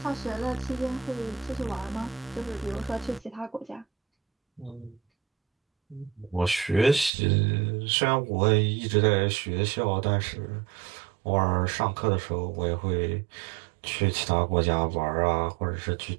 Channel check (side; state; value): left; drops out; at 7.1 s